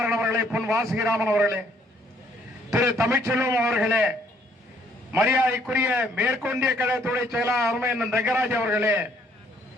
அவர்களே, பொன் வாசுகிராமன் அவர்களே, திரு தமிழ்ச்செல்வம் அவர்களே, மரியாதைக்குரிய மேற்கொண்டிய கழகத்துடைய செயலாளர் அருமையண்ணன் ரங்கராஜ் அவர்களே,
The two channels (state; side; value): normal; both; correlation 0.65